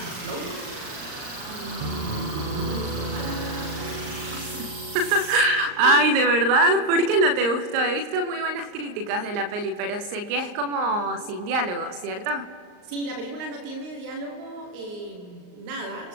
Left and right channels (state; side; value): late; left; 39 ms